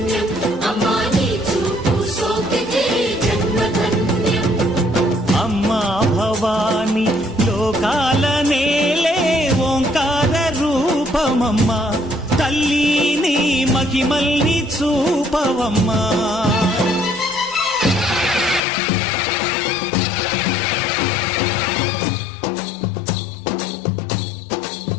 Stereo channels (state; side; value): drops out; right; at 18.6 s